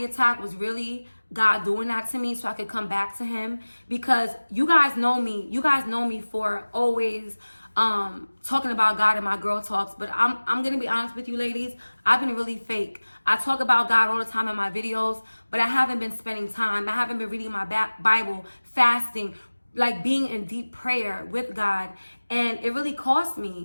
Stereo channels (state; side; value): inverted; both; correlation -1.00